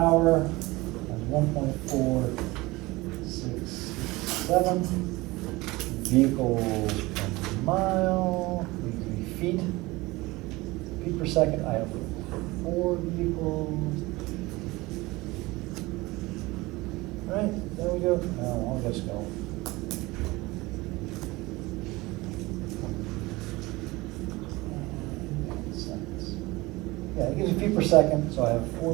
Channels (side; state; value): left; quieter; 21.4 dB